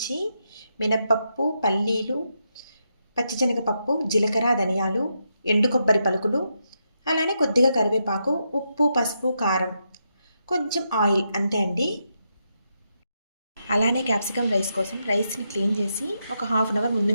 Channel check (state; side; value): inverted; both; correlation -0.83